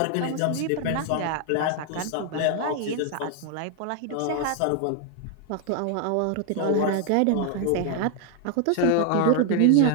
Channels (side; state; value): both; different; correlation 0.00